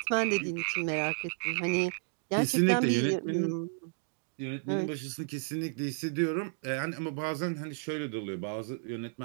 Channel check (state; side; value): silent; left; 55 dB below the other